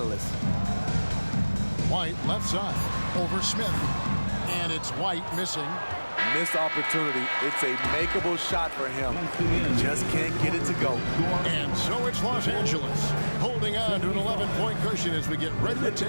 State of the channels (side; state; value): both; inverted; correlation -1.00